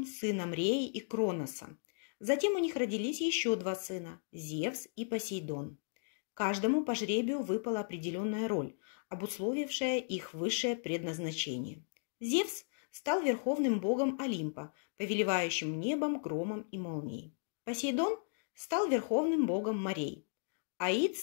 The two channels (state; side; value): silent; right; digital silence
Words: сыном Реи и Кроноса. Затем у них родились еще два сына – Зевс и Посейдон. Каждому по жребию выпала определенная роль, обусловившая их высшее предназначение. Зевс стал верховным богом Олимпа, повелевающим небом, громом и молнией. Посейдон стал верховным богом морей. Аид